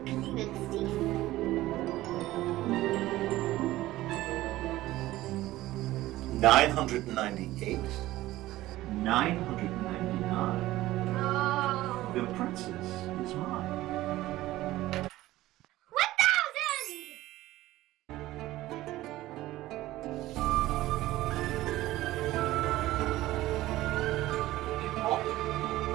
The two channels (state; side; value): quieter; left; 16.4 dB